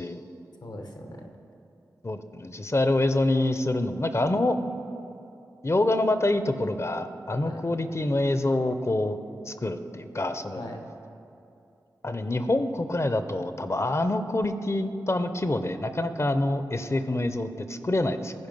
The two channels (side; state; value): both; normal; correlation 0.89